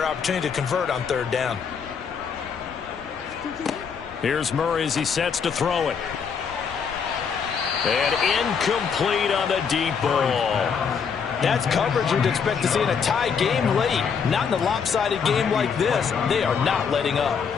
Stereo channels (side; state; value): right; quieter; 6.4 dB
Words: opportunity to convert on 3rd down. Here's Murray as he sets to throw it. And incomplete on the deep ball. That's coverage you'd expect to see in a tie game late. Not in a lopsided game like this. They are not letting up.